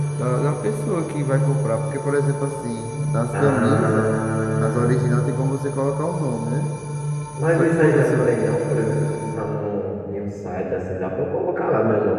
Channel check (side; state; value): both; identical; correlation 1.00